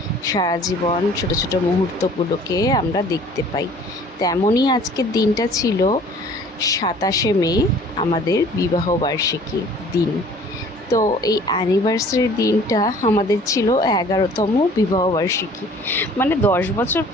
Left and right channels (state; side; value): normal; both; correlation 0.51